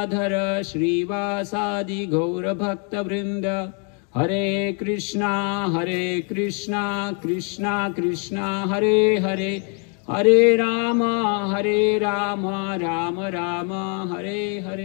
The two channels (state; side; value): quieter; right; 38.9 dB